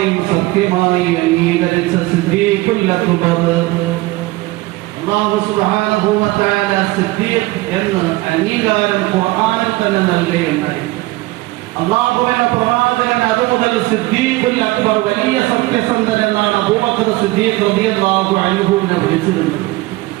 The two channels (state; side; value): quieter; left; 20.0 dB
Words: സത്യമായി അംഗീകരിച്ച സിദ്ദീഖുൽ അക്ബർ. അല്ലാഹു സുബ്ഹാനഹു വ തആല സിദ്ദീഖ് എന്ന അംഗീകാരം ഖുർആനിൽ തന്നെ നൽകുകയുണ്ടായി. അല്ലാഹുവിന്റെ പ്രവാചകൻ അതുമുതൽ സിദ്ദീഖുൽ അക്ബർ, വലിയ സത്യസന്ധൻ എന്നാണ് അബൂബക്കർ സിദ്ദീഖ് റളിയല്ലാഹു അൻഹുവിനെ വിളിച്ചിരുന്നത്.